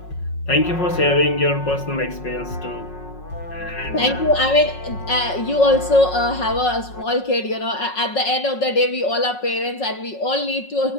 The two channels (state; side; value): late; right; 5.4 ms